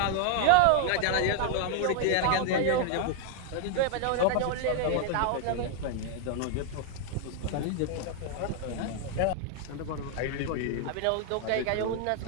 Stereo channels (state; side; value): different; both; correlation 0.00